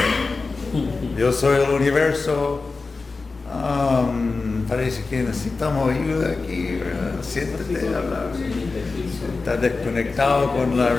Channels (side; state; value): right; quieter; 4.0 dB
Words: yo soy el universo, parece que necesitamos ayuda aquí, ¿verdad? Siéntate a hablar. Estás desconectado con la